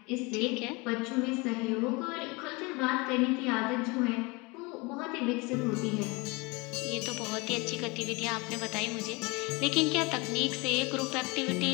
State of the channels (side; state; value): right; quieter; 26.5 dB